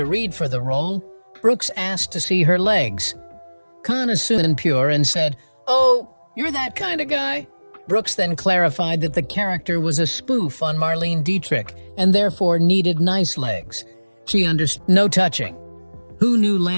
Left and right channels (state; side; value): inverted; both; correlation -1.00